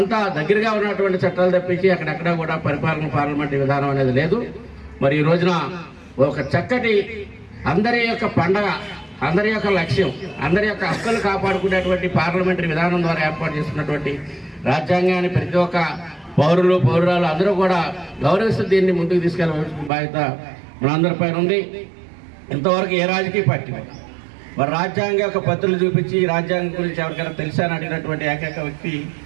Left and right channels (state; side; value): drops out; left; at 19.9 s